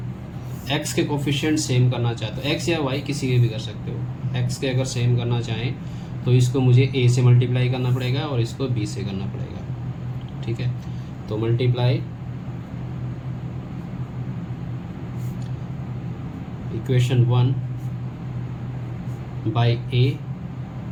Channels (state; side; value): identical; both; correlation 1.00